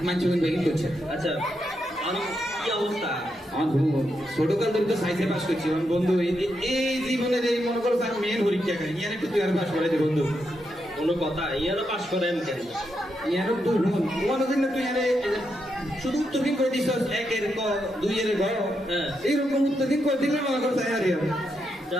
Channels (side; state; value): both; normal; correlation 0.82